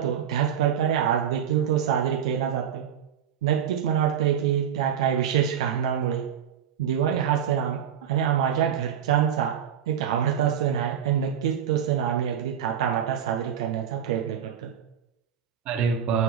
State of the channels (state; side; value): quieter; left; 8.8 dB